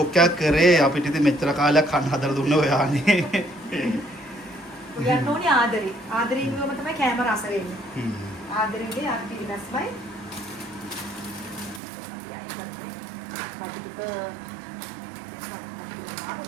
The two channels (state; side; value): drops out; left; at 11.8 s